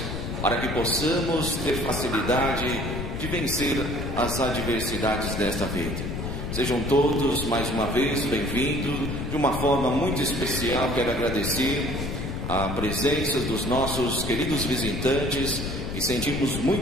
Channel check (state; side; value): noise; left; rumble, 5 dB below the sound